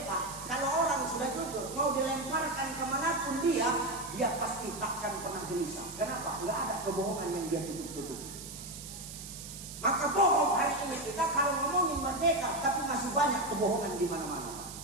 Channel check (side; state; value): right; noise; hiss, 11 dB below the sound